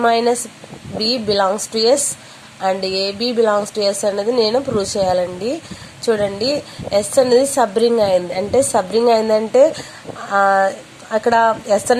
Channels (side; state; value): both; identical; correlation 1.00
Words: minus B belongs to S and AB belongs to S అనేది నేను prove చేయాలండి. చూడండి S అనేది subring అయింది. అంటే subring అయిందంటే అక్కడ S